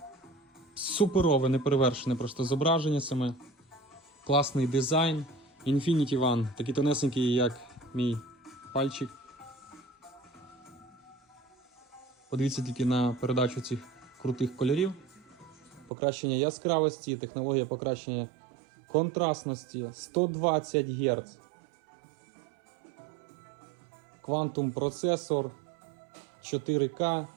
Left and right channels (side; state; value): left; drops out; at 15.9 s